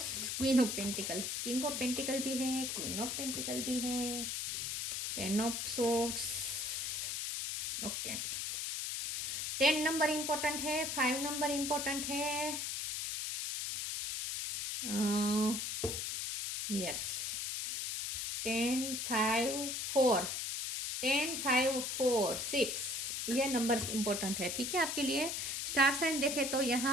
queen of pentacle, king of pentacle भी है, क्वीन ऑफ पेंटिकल भी है, ten of swords. Okay, 10 number important है, 5 नंबर इंपॉर्टेंट है। यस, 10 5 4, 10 5 4 6, ये नंबर्स इंपॉर्टेंट है, ठीक है आपके लिए। स्टार साइन देखे तो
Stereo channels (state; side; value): noise; left; hiss, 2 dB below the sound